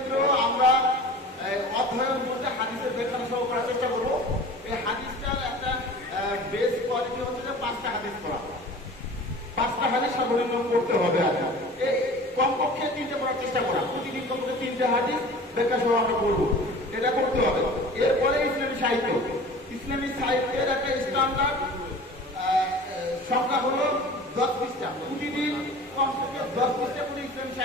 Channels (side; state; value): both; normal; correlation 0.41